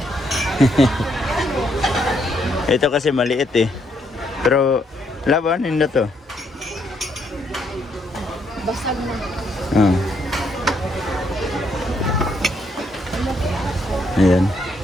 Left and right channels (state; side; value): normal; both; correlation 0.73